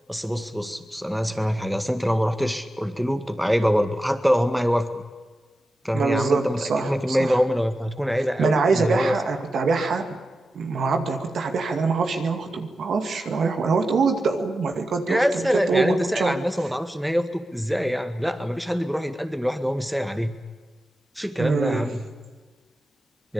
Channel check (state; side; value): normal; both; correlation 0.91